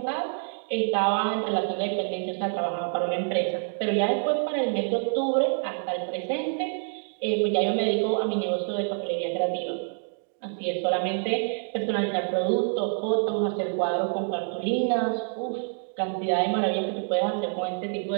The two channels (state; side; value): silent; left; 56 dB below the other